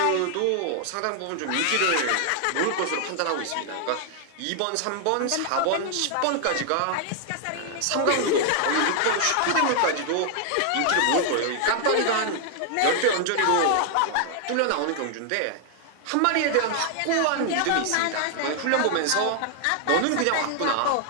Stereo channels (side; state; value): both; different; correlation 0.00